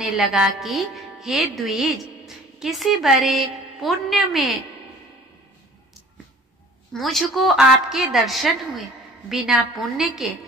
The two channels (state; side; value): normal; both; correlation 0.48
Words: लगा कि हे द्विज, किसी बड़े पुण्य में मुझको आपके दर्शन हुए। बिना पुण्य के